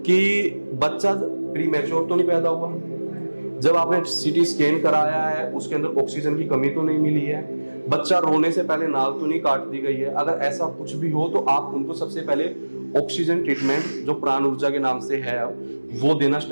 कि बच्चा प्रीमैच्योर तो नहीं पैदा हुआ, जब आपने सीटी स्कैन कराया है उसके अंदर ऑक्सीजन की कमी तो नहीं मिली है, बच्चा रोने से पहले नाल तो नहीं काट दी गई है। अगर ऐसा कुछ भी हो तो आप उनको सबसे पहले ऑक्सीजन ट्रीटमेंट जो प्राण ऊर्जा के नाम से है वो देना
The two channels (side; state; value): both; inverted; correlation -1.00